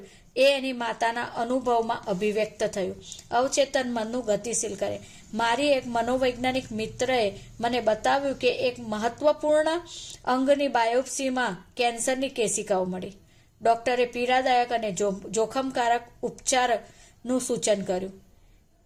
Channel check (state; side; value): identical; both; correlation 1.00